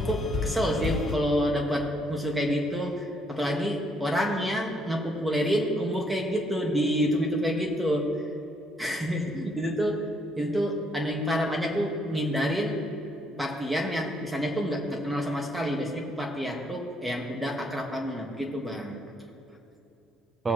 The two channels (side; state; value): both; normal; correlation 0.71